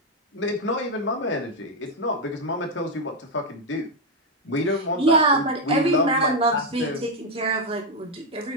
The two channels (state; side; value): normal; both; correlation 0.03